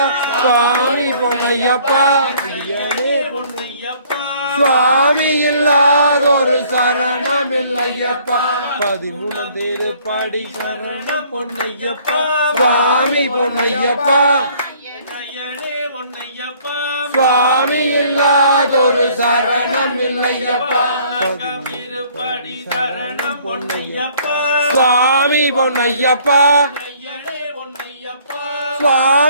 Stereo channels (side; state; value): both; inverted; correlation -0.58